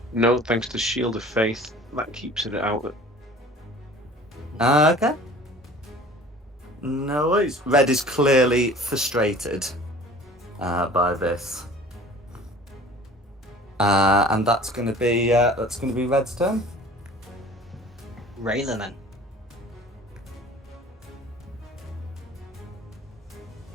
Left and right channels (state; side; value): normal; both; correlation 0.45